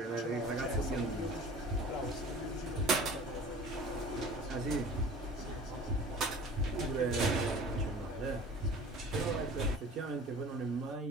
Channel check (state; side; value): normal; both; correlation 0.43